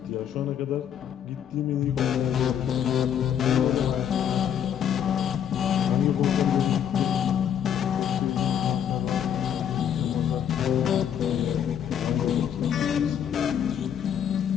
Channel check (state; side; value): quieter; right; 9.0 dB